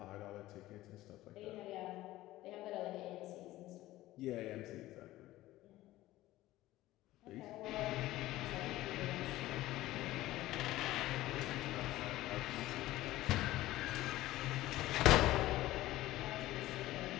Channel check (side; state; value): right; quieter; 16.3 dB